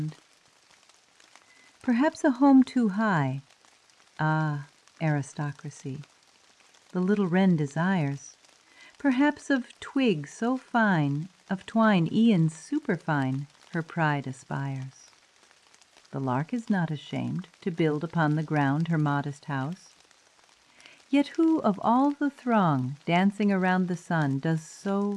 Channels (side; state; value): both; identical; correlation 1.00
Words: Perhaps a home too high, ah, aristocracy, the little wren desires, Perhaps of twig so fine, of twine e'en superfine, her pride aspires. The lark is not ashamed to build upon the ground her modest house. Yet who of all the throng dancing around the sun does so